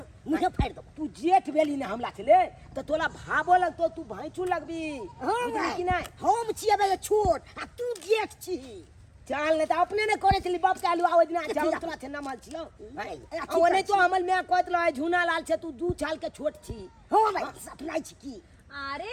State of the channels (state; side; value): identical; both; correlation 1.00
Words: मुझे फाड़ दो तू जेठ बेली ने हमला छले तो तोला भाबो लगतो तू भाईचू लगबी हां बुझली कि नहीं हम छिए बे छोट आ तू जेठ छी चाल ने तो अपने ने करे छली बाप के आलू आवाज ना चाल तोला छे ना माल छिलो ओने तो हमल में कहत रहे झुना लाल छे तू 2 साल के छोट छी हो भाई सपना छी की अरे